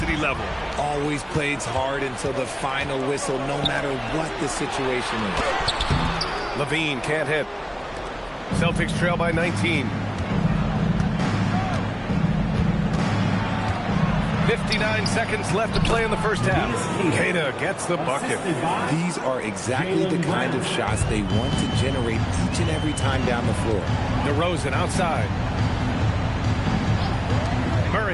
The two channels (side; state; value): both; identical; correlation 1.00